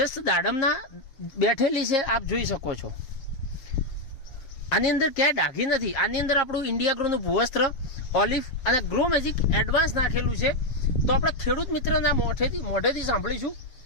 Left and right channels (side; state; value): right; late; 6.9 ms